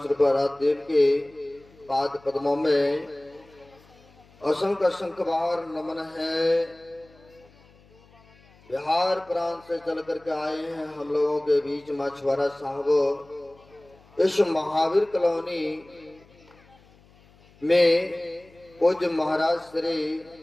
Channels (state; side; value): noise; left; hum, 28 dB below the sound